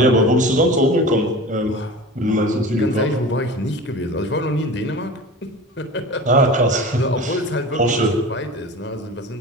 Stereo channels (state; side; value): normal; both; correlation 0.35